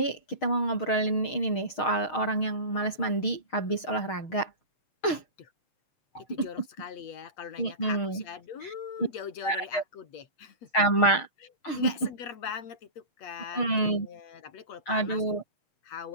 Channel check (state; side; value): late; right; 6.5 ms